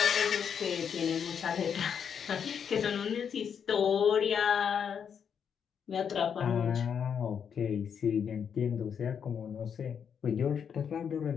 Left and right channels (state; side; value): quieter; right; 7.4 dB